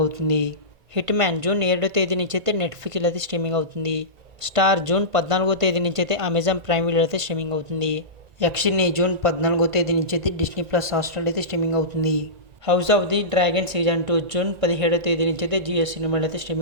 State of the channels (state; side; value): late; left; 1.9 ms